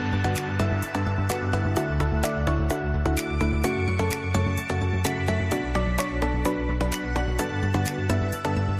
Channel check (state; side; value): identical; both; correlation 1.00